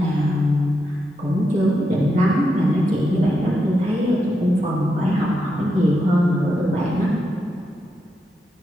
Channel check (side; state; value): both; normal; correlation 0.84